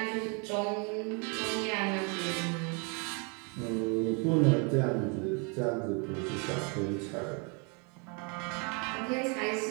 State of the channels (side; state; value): left; quieter; 34.5 dB